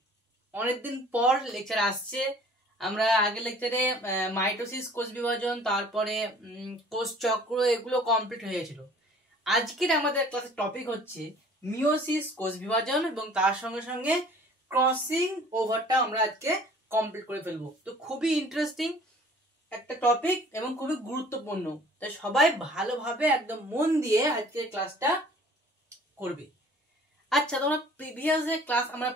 অনেকদিন পর লেকচার আসছে। আমরা আগের লেকচারে মাইটোসিস, কোষ বিভাজন, তারপরে কোষ চক্র এগুলো কমপ্লিট হয়েছিল। আজকের আমাদের ক্লাসের টপিক হচ্ছে মিওসিস, কোষ বিভাজন এবং তার সঙ্গে সঙ্গে ক্রসিং ওভারটা আমরা আজকে কমপ্লিট করে ফেলবো। তো খুবই ইন্টারেস্টিং একটা টপিক এবং খুবই গুরুত্বপূর্ণ, তাই সবাই ভালোভাবে একদম মন দিয়ে আজকের ক্লাসটা করবে। আচ্ছা, তোমরা প্রিভিয়াস যে ক্লাস আমরা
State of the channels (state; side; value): normal; both; correlation 0.51